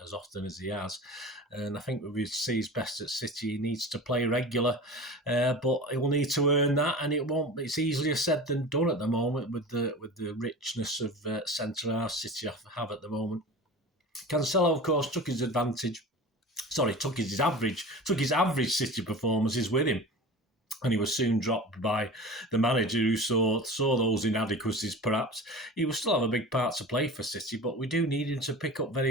often as he has. And I think if he sees best at City, he needs to play regular, but he will need to earn that, and it won't. It's easier said than done at the moment with the richness of centre half City have at the moment. Cancelo, of course, took his average City performances with him. And he was soon dropped by the manager who saw those inadequacies, perhaps. He will still have a big part to play for City, but we do need him to pick up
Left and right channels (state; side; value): normal; both; correlation 0.34